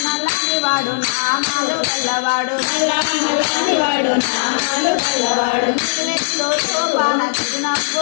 నల్లని వాడు నామాలు గల్లవాడు, నల్ల నల్లని వాడు నామాలు గల్లవాడు, బాణ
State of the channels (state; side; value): silent; right; 65 dB below the other